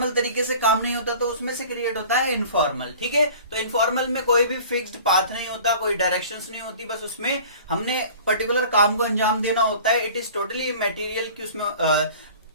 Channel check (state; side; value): inverted; both; correlation -0.44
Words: तरीके से काम नहीं होता तो उसमें से क्रिएट होता है इनफॉर्मल। ठीक है, तो इनफॉर्मल में कोई भी फिक्स्ड पाथ नहीं होता, कोई डायरेक्शंस नहीं होती, बस उसमें हमने पर्टिकुलर काम को अंजाम देना होता है। इट इज टोटली मटेरियल कि उसमें